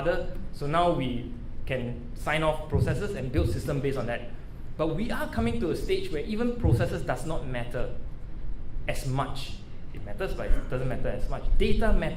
So now we can sign off processes and build system based on that. But we are coming to a stage where even processes does not matter as much. It matters, but it doesn't matter as much. Data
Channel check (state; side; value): identical; both; correlation 1.00